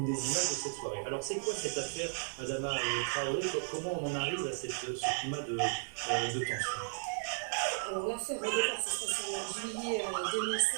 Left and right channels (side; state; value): left; silent; 55 dB below the other